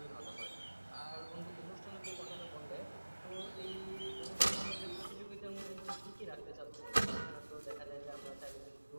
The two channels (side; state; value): both; inverted; correlation -1.00